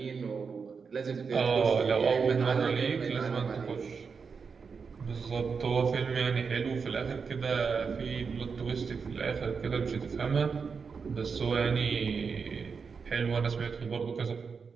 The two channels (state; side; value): quieter; left; 5.5 dB